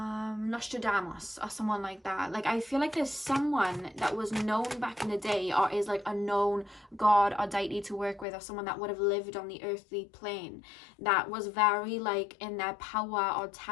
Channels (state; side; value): drops out; right; at 8.2 s